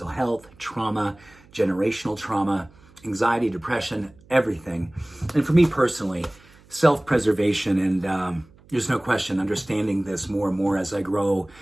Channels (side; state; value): right; noise; hum, 27 dB below the sound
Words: health, trauma, generational trauma, anxiety, depression, everything. And for me personally, self-preservation and there's no question understanding this more and more as I grow